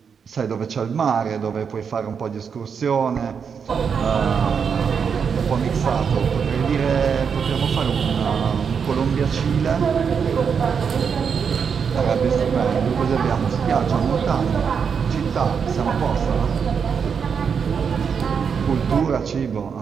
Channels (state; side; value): quieter; left; 6.5 dB